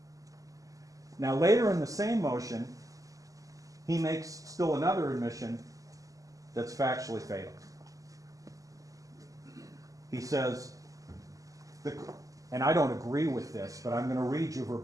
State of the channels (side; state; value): left; late; 0.17 ms